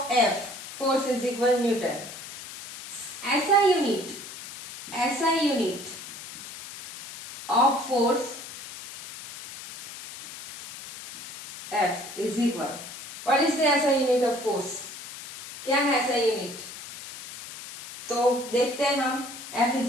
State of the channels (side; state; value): left; noise; hiss, 12 dB below the sound